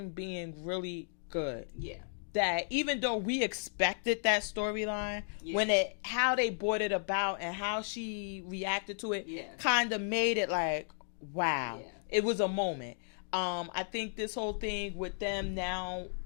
being really good, that even though we expected that storyline, how they brought it about and how she reacted to it, kind of made it like, wow. It was a moment. I think this whole thing with them now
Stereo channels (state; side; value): silent; right; digital silence